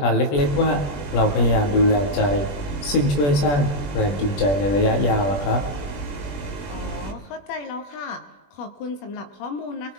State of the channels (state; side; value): late; right; 21 ms